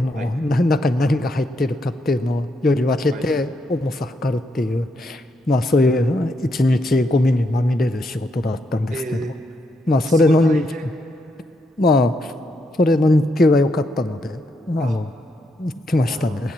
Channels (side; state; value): both; normal; correlation 0.79